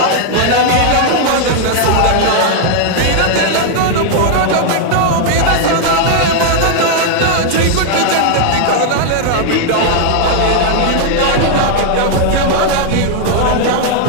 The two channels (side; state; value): both; different; correlation 0.00